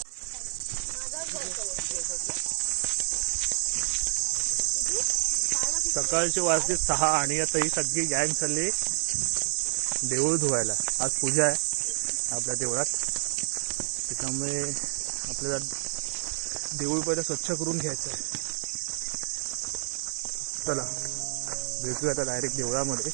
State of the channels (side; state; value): left; silent; digital silence